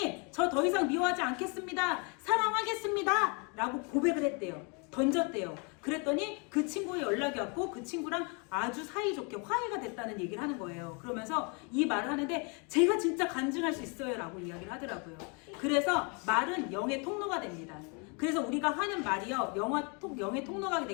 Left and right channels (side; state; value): right; quieter; 34.1 dB